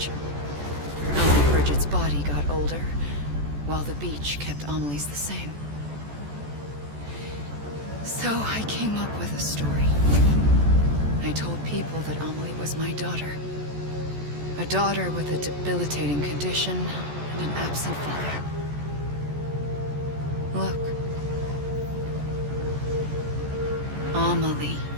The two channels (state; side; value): late; left; 14 ms